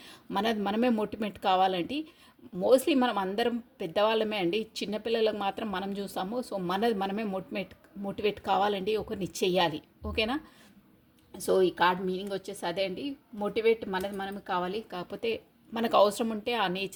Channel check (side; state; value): both; identical; correlation 1.00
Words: మనమే మోటివేట్ కావాలండి. మోస్ట్లీ మనం అందరం పెద్దవాళ్ళమే అండి, చిన్నపిల్లలకు మాత్రం మనం చూస్తాము. సో మనమే మోటివేట్ కావాలండి, ఒకరిని చెయ్యాలి. ఓకేనా? సో ఈ కార్డ్ మీనింగ్ వచ్చేసి అదే అండి, మోటివేట్ మనమే కావాలి. కాకపోతే మనకు అవసరం ఉంటే ఆ